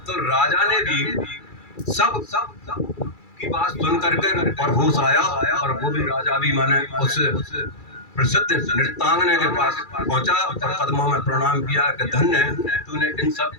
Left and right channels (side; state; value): right; late; 2.3 ms